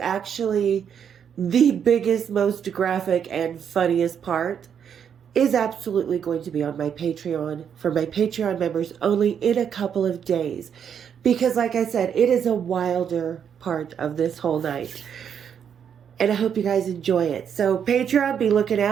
the biggest, most graphic, and funniest part is absolutely going to be on my Patreon for my Patreon members only in a couple of days. Because like I said, it is a wilder part of this whole night. And I hope you guys enjoy it. So Patreon, be looking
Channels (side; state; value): left; quieter; 8.0 dB